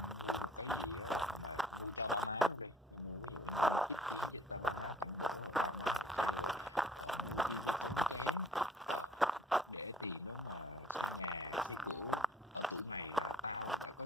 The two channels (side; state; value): both; normal; correlation 0.57